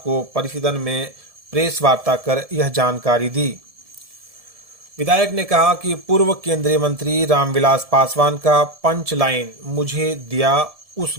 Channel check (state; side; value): late; left; 1.7 ms